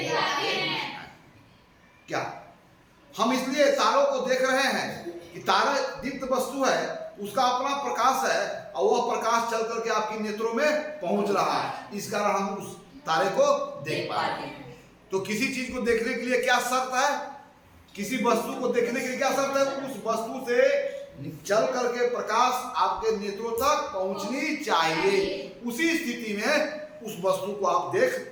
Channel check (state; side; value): identical; both; correlation 1.00